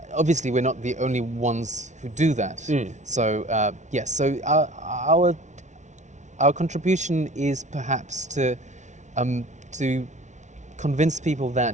obviously we're not the only ones who do that. Mm. So yes, so our contribution is perhaps to convince people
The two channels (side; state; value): left; late; 0.34 ms